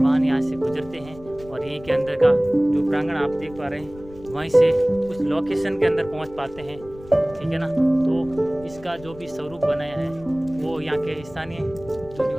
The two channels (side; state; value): left; noise; rumble, 19 dB below the sound